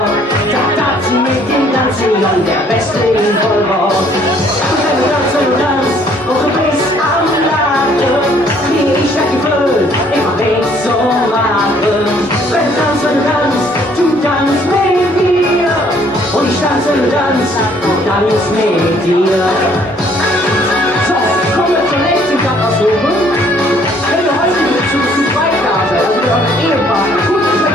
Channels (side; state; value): both; normal; correlation 0.62